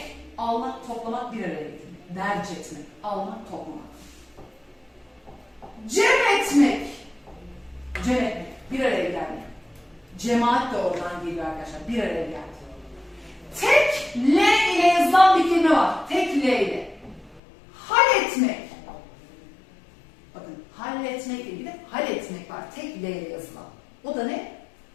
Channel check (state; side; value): drops out; right; at 17.4 s